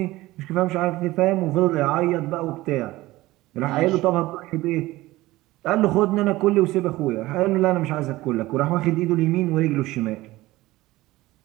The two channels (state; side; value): quieter; left; 18.2 dB